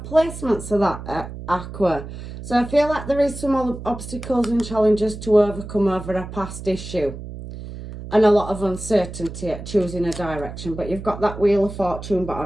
placements of that Aqua. So I feel like there is some obstacles and challenges to overcome over a past issue. And a lot of uncertainty at choosing a direction. But you've got that Wheel of Fortune, but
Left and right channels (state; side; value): noise; right; hum, 11 dB below the sound